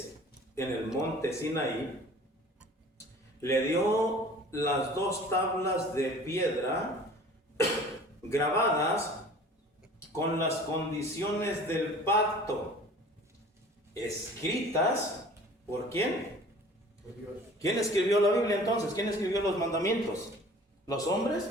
en el monte Sinaí, le dio las 2 tablas de piedra grabadas con las condiciones del pacto, escritas ¿por quién? ¿Quién escribió la Biblia entonces? ¿Quién escribió los mandamientos? ¿Los hombres?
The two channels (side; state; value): both; normal; correlation 0.46